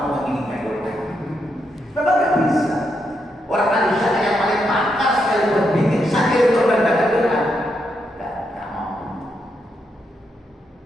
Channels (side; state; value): both; normal; correlation 0.81